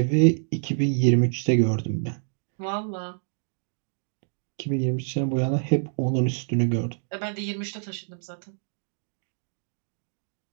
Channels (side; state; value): left; silent; digital silence